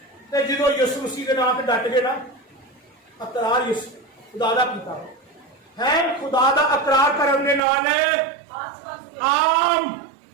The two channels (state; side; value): drops out; left; at 7.6 s